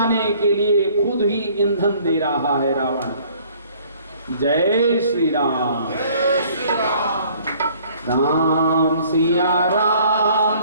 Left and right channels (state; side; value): inverted; both; correlation -0.57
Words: के लिए खुद ही ईंधन दे रहा है रावण। जय श्री राम। राम सिया